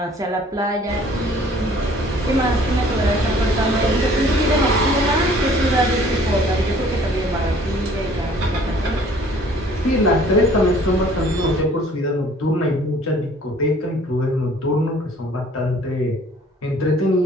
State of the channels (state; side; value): normal; both; correlation 0.54